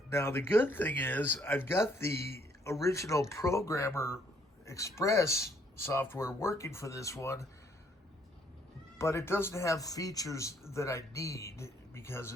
Now, the good thing is I've got the original Programmer Express software working for this one, but it doesn't have features that I need because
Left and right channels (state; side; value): normal; both; correlation 0.67